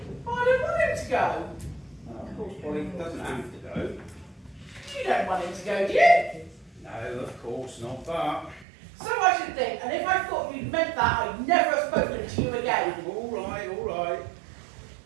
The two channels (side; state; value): left; drops out; at 8.7 s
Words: I don't want him to go. Well, of course, Polly doesn't have to go. You don't want him to go, do you? No, of course not, but... So I should think, and if I thought you'd meant that, I'd never have spoken to you again. All right, all right.